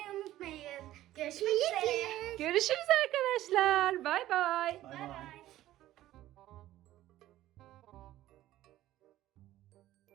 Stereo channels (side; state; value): left; quieter; 14.4 dB